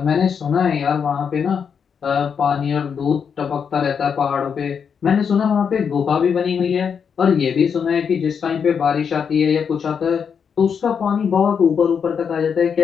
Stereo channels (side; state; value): right; quieter; 6.8 dB